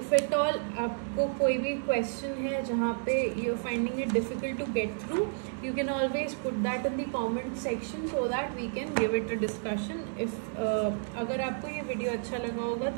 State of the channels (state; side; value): silent; left; 57 dB below the other